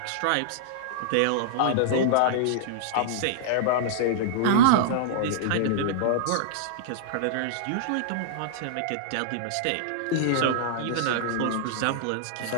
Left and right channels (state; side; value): different; both; correlation -0.01